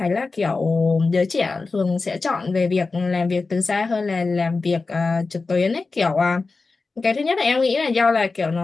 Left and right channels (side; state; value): right; quieter; 3.9 dB